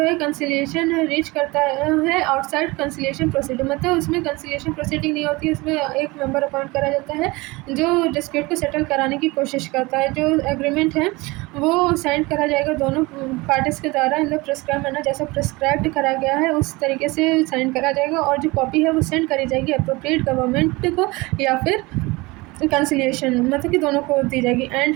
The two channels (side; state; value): left; quieter; 23.2 dB